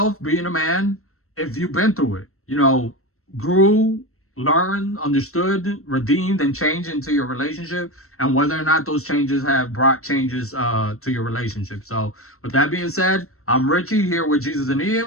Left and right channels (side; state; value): right; late; 0.63 ms